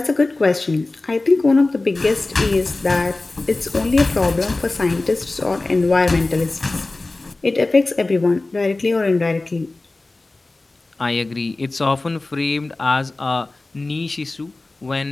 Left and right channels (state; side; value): quieter; right; 3.1 dB